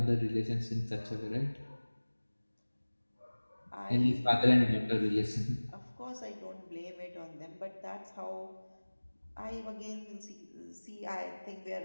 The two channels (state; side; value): inverted; both; correlation -1.00